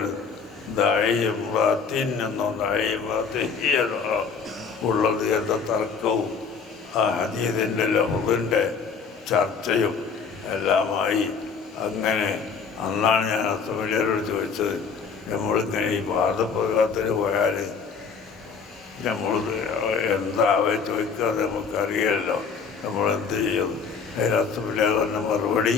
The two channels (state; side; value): quieter; right; 5.7 dB